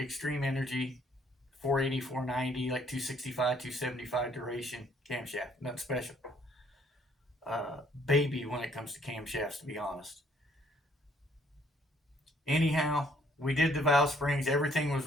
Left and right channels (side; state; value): both; normal; correlation 0.64